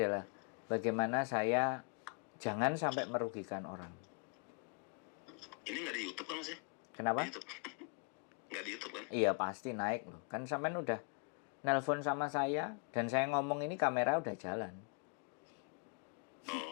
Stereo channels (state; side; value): quieter; right; 37.3 dB